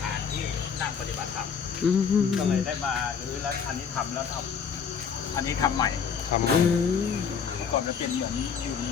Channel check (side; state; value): right; quieter; 6.7 dB